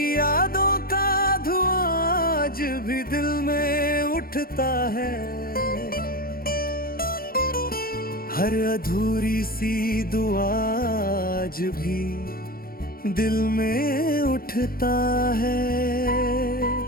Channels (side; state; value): right; late; 0.43 ms